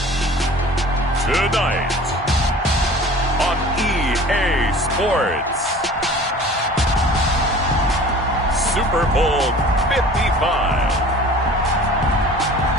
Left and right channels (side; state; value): both; normal; correlation 0.44